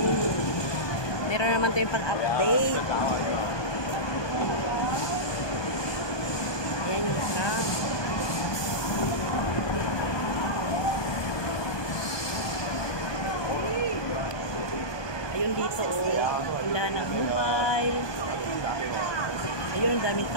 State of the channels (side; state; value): right; late; 1.2 ms